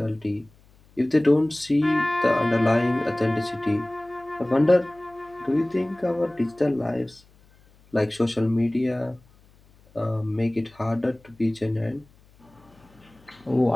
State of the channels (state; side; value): noise; left; hum, 29 dB below the sound